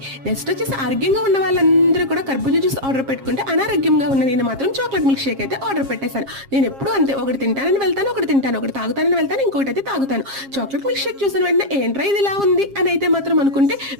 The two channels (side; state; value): left; late; 7.4 ms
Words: నెక్స్ట్ వచ్చేసి ఆరోగ్యంగా ఉన్న వాళ్ళందరూ కూడా కర్బూజా జ్యూస్ ఆర్డర్ పెట్టుకుంటే అనారోగ్యంగా ఉన్న నేను మాత్రం చాక్లెట్ మిల్క్ షేక్ అయితే ఆర్డర్ పెట్టేశాను. నేను ఎప్పుడు అంతే, ఒకటి తింటానని వెళ్తాను, ఒకటి తింటాను, ఒకటి తాగుతానని వెళ్తాను, ఇంకోటి అయితే తాగుతాను. చాక్లెట్ మిల్క్ షేక్ చూసిన వెంటనే ఏంట్రా ఇది ఇలా ఉంది అని అయితే మాత్రం అనుకుంటే